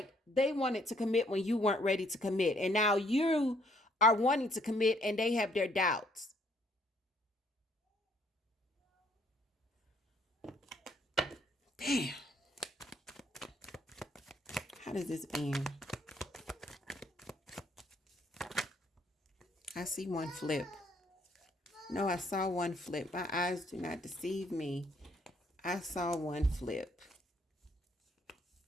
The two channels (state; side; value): normal; both; correlation 0.67